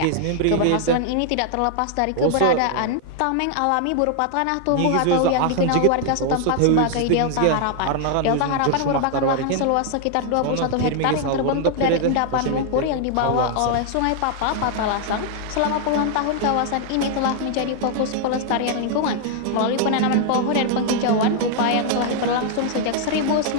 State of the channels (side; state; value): both; different; correlation 0.00